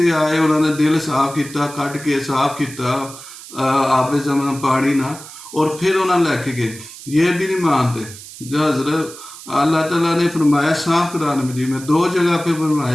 आए, उन्होंने दिल साफ किया, कट के साफ किया आपे जमन पानी ना, और फिर उन्होंने लैके गए। ये भी नहीं मानते। जो हजरत अल्लाह ताला ने फरमाया साफ कुरान मजीद में 2 जगह पे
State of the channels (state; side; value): noise; right; hiss, 15 dB below the sound